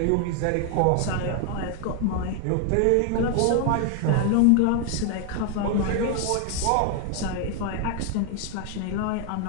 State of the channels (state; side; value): different; both; correlation 0.01